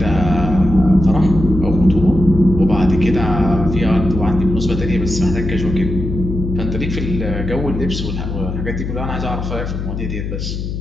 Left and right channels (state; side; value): noise; left; hum, 5 dB below the sound